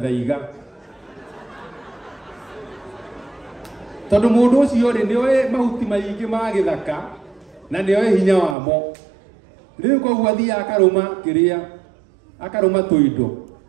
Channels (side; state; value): left; drops out; at 8.6 s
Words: tondu mũndũ ũcio rĩ nĩ oĩ mahuti maingĩ ma gĩthaka na nĩ oĩ hinya wamo rĩu koguo athiaga akarũma tũindo